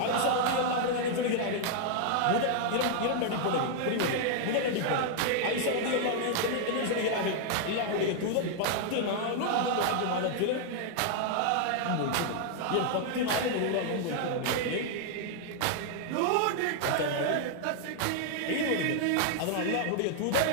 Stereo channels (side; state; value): both; different; correlation 0.00